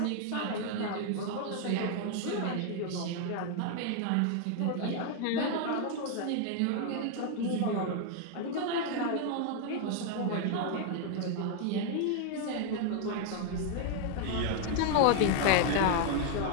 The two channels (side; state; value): both; different; correlation 0.00